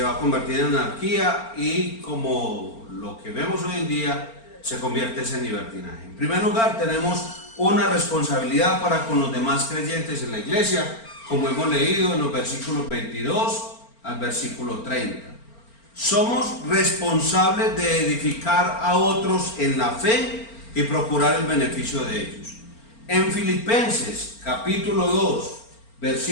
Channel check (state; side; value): late; right; 4.4 ms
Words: va a convertir en anarquía y, como lo que vemos hoy en día, se convierte en libertinaje. En primer lugar, tenemos una responsabilidad para con los demás creyentes en la iglesia, como hemos leído en los versículos 22 al versículo 30. Somos responsables de edificar a otros en la fe y procurar el beneficio de ellos. En Filipenses capítulo 2,